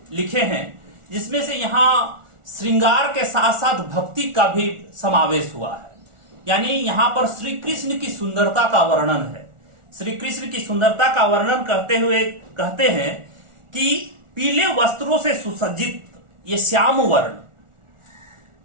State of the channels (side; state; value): left; late; 1.4 ms